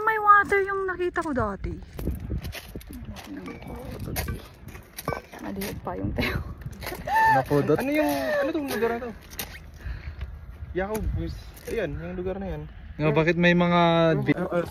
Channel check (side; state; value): both; identical; correlation 1.00